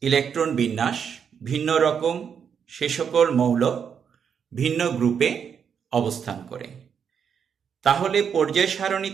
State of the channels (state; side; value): quieter; left; 7.3 dB